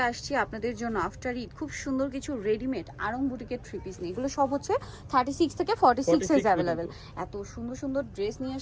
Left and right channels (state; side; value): identical; both; correlation 1.00